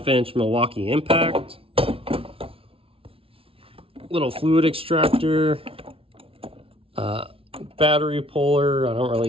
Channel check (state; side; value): late; left; 0.26 ms